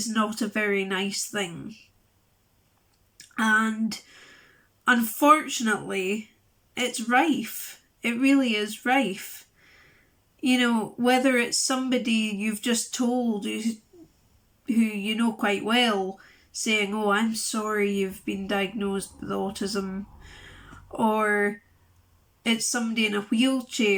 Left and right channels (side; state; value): both; identical; correlation 1.00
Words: not a very nice thing. And unfortunately, it's rife. It really is rife. You know, whether it's somebody you've just told who you know quite well, saying, oh, I'm sorry you've been diagnosed with autism, or it's somebody in a